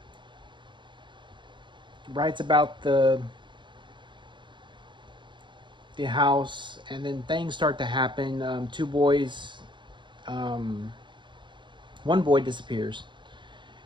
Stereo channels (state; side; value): late; left; 0.23 ms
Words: writes about the house, and then things start to happen. Two boys, um, one boy disappears,